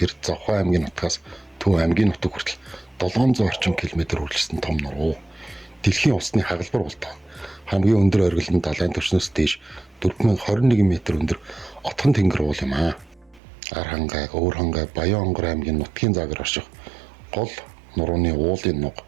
Завхай аймгийн нутгаас Төв аймгийн нутаг хүртэл 700 орчим км үргэлжлэсэн том нуруу. Дэлхийн усны хагалбар болдог. Хамгийн өндөр оргил нь далайн түвшнээс дээш 4021 м өндөр отхон тэнгэр уул юм аа. Архангай, Өвөрхангай, Баян-Онгор аймгийн нутгийн загвар орших гол нурууны уулын нуг,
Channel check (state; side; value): drops out; left; at 13.4 s